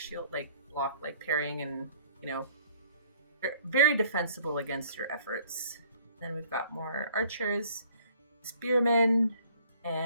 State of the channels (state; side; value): inverted; both; correlation -0.57